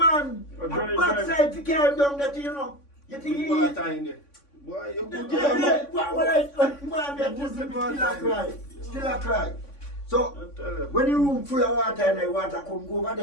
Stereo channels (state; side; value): late; right; 3.5 ms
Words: Oh, dry, And backside to carry down that, you know. You think he... Water in there. Boy, you put Still a cry. So, when the room full of water and the water come go over